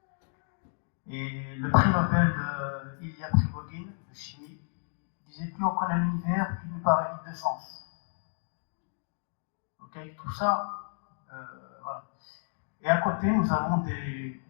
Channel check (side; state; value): right; silent; digital silence